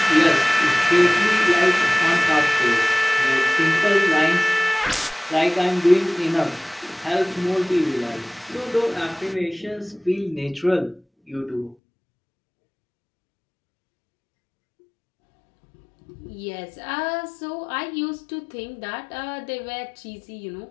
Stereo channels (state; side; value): drops out; right; at 11.8 s